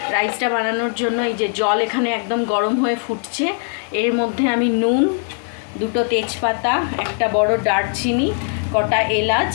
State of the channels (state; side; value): silent; right; 56 dB below the other